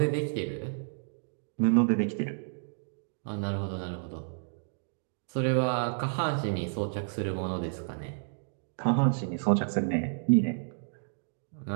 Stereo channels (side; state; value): left; silent; digital silence